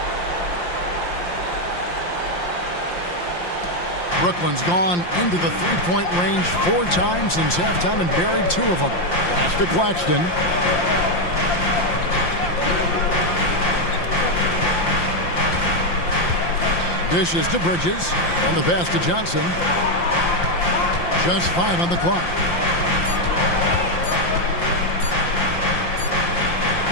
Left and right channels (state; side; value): late; right; 5.7 ms